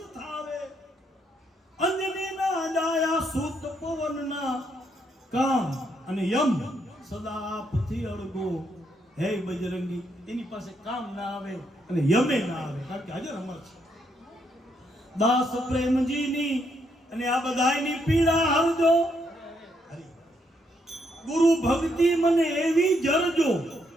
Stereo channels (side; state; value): both; normal; correlation 0.75